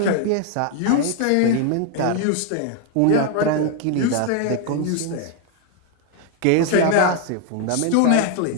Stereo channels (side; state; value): both; different; correlation 0.00